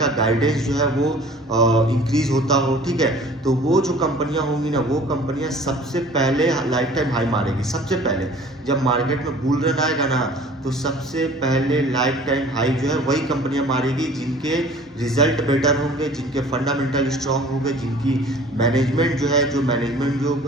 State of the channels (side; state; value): both; normal; correlation 0.48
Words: गाइडेंस जो है वो इंक्रीज होता हो, ठीक है। तो वो जो कंपनियां होंगी ना, वो कंपनियां सबसे पहले लाइफ टाइम हाई मारेगी। सबसे पहले जब मार्केट में बुल रन आएगा ना तो सबसे पहले लाइफ टाइम हाई जो है वही कंपनियां मारेगी जिनके रिजल्ट बेटर होंगे, जिनके फंडामेंटल स्ट्रांग होंगे, जिनकी मैनेजमेंट जो है, जो मैनेजमेंट जो